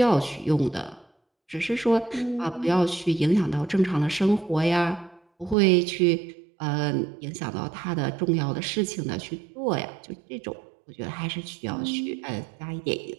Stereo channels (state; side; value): drops out; left; at 5.6 s